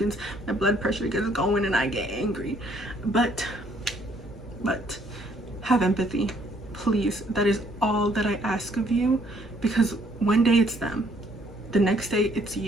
my blood pressure gets going and I get angry. But have empathy, please. That is all that I ask of you, because one day it's them, the next day it's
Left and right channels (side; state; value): both; normal; correlation 0.65